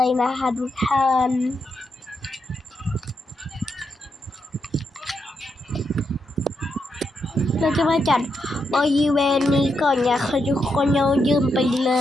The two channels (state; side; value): normal; both; correlation 0.82